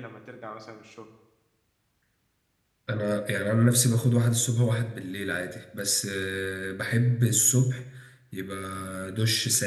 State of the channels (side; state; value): both; identical; correlation 1.00